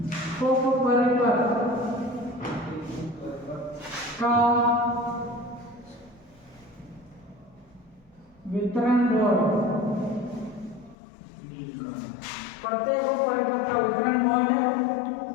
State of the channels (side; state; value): right; drops out; at 11.0 s